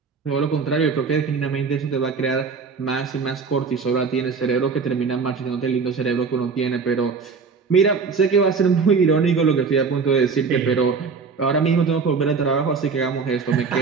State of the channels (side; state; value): left; quieter; 5.1 dB